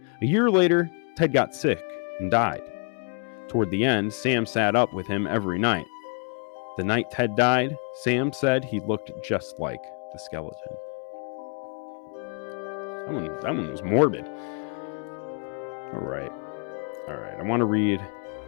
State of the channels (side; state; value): right; quieter; 39.9 dB